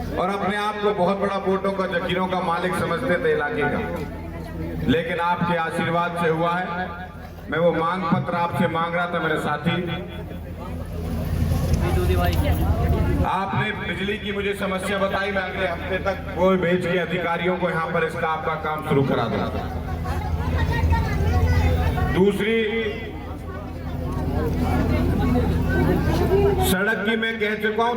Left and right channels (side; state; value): both; identical; correlation 1.00